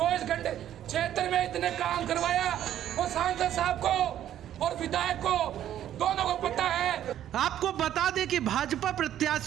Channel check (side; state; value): left; quieter; 11.3 dB